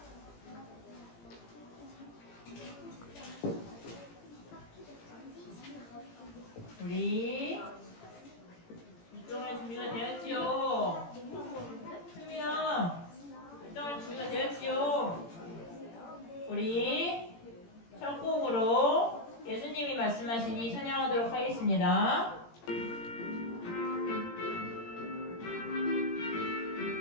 우리 일정할 준비가 되었지요. 수민아, 일정할 준비가 되었지요. 우리 첫 곡으로 예수님이 말씀하시니 찬양하도록 하겠습니다.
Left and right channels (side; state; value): right; late; 17 ms